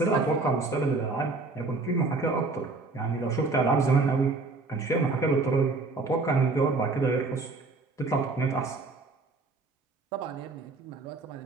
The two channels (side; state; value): left; quieter; 3.6 dB